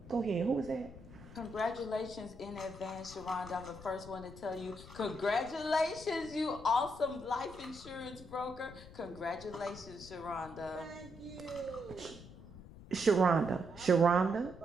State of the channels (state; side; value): noise; left; rumble, 16 dB below the sound